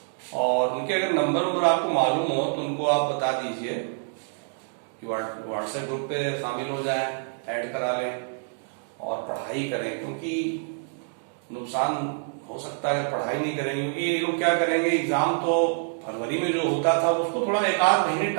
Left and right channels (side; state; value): left; silent; digital silence